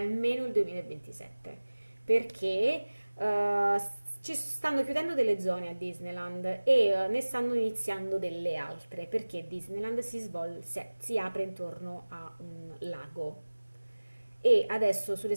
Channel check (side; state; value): both; inverted; correlation -1.00